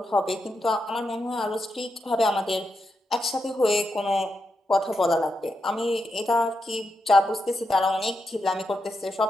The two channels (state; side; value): normal; both; correlation 0.85